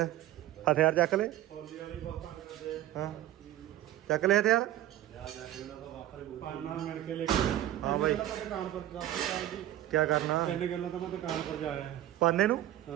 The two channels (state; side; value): quieter; left; 13.5 dB